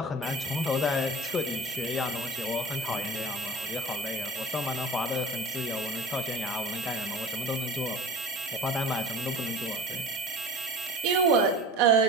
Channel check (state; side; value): normal; both; correlation 0.38